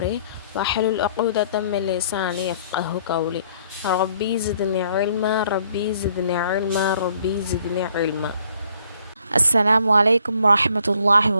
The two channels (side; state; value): both; inverted; correlation -0.64